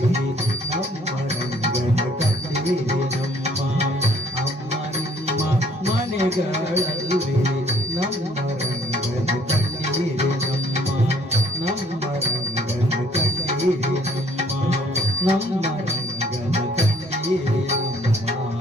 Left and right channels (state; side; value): normal; both; correlation 0.60